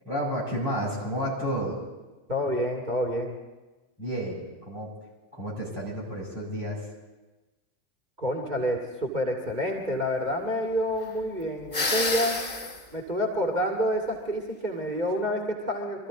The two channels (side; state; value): left; late; 2.1 ms